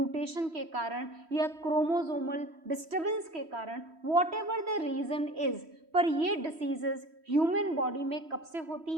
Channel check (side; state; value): left; late; 3.1 ms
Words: के कारण या क्रोमोसोमल डिस्टर्बेंस के कारण, whatever the reason is, पर ये डिसीजेस ह्यूमन बॉडी में कब से होती